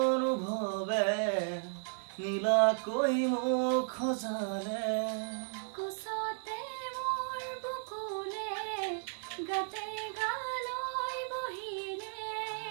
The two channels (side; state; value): left; silent; 55 dB below the other